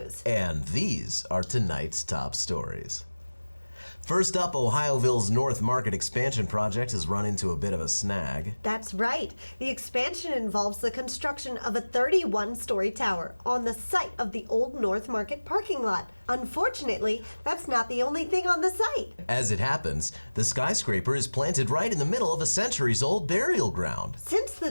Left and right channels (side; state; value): both; inverted; correlation -1.00